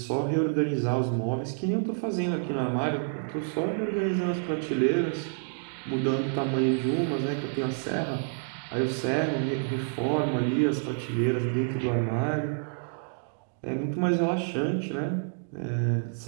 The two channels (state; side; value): silent; left; digital silence